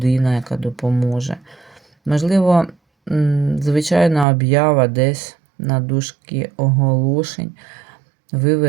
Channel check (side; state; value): left; drops out; at 4.2 s